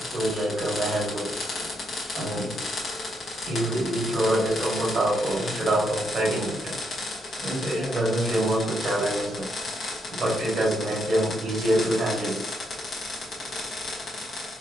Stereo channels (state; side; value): normal; both; correlation 0.78